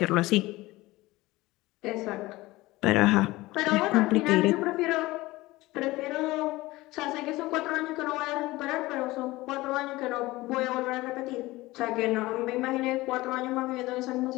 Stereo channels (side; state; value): right; quieter; 19.5 dB